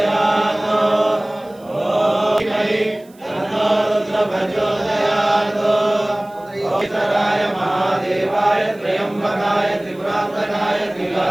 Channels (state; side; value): noise; right; hiss, 29 dB below the sound